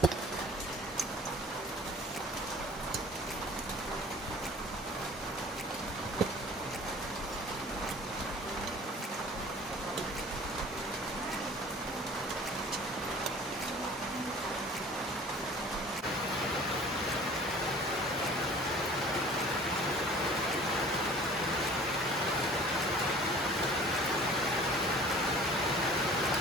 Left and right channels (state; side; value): normal; both; correlation 0.47